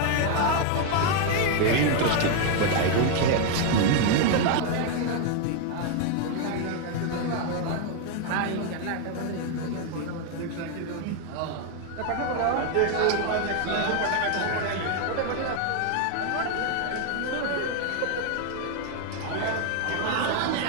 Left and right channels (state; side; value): different; both; correlation 0.01